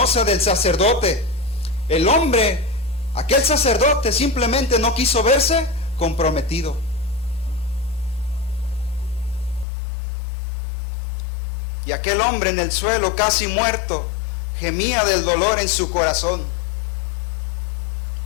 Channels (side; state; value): right; drops out; at 9.7 s